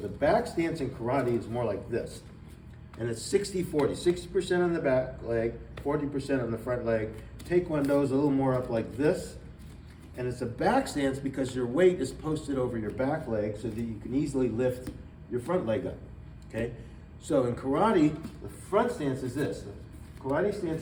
back stance in karate is more like this. And it's 60-40, 60% on the back leg, 40% on the front leg. Taekwondo is a little more up like this. And it's a back stance because your weight is posted over your back leg so that you can easily lift your front leg up, okay? So in karate, the front stance is this. The karate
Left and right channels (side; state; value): both; identical; correlation 1.00